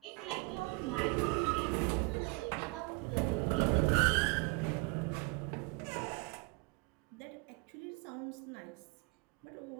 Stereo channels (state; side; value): quieter; left; 27.7 dB